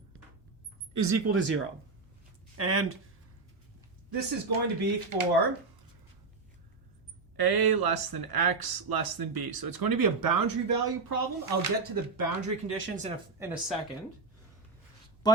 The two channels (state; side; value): quieter; left; 4.0 dB